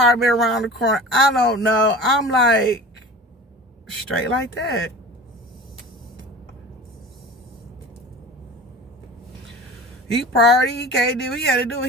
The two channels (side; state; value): both; normal; correlation 0.37